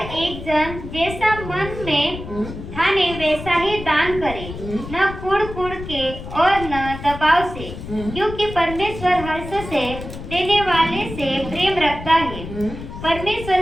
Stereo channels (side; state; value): left; noise; rumble, 10 dB below the sound